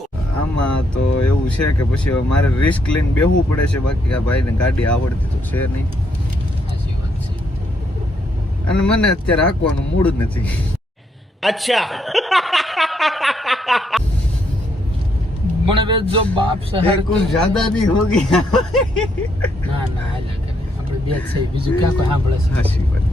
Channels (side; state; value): both; normal; correlation 0.75